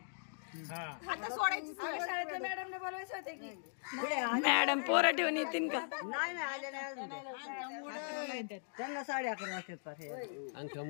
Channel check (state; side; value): silent; right; digital silence